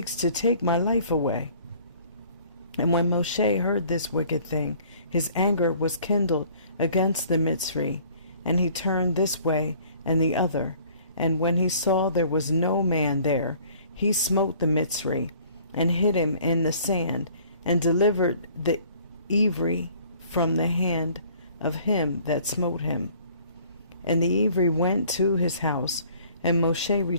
to take my life away. And when Moshe heard this wicked thing, his anger was kindled against the Mitzri, and he turned this way and the other. And when he saw there was no man there, he smote the Mitzri, and hid him in the sand, and delivered the Ivri from the hand of him that smote him. And the Ivri went to his house, and Moshe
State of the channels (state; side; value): inverted; both; correlation -0.55